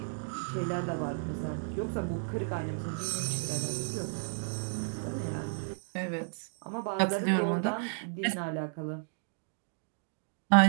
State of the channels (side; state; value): left; silent; digital silence